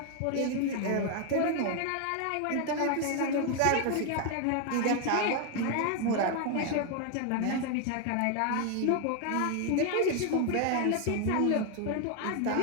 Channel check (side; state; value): both; different; correlation 0.01